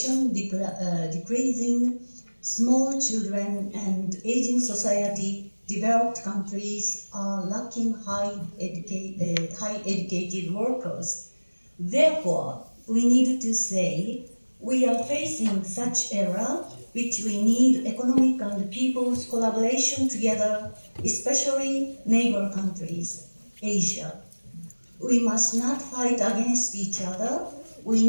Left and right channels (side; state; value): both; inverted; correlation -1.00